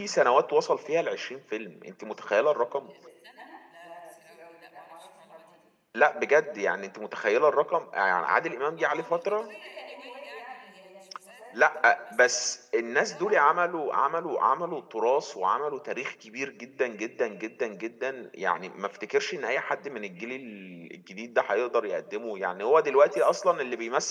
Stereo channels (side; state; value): both; identical; correlation 1.00